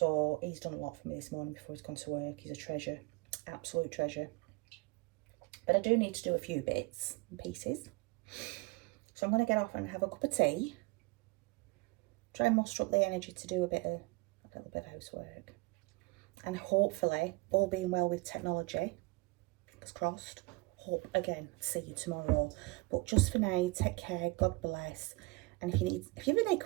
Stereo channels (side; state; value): left; quieter; 24.2 dB